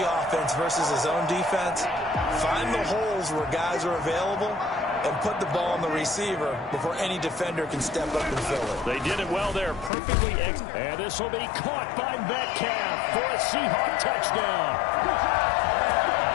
offense versus his own defense, find the holes where guys are available and put the ball on the receiver before any defender can step up and fill it. They did it well there, perfectly. And this will be caught by Metcalf for a Seahawk touchdown.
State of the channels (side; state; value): right; drops out; at 9.9 s